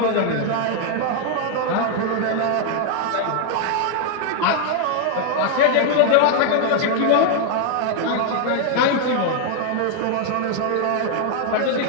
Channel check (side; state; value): both; different; correlation 0.00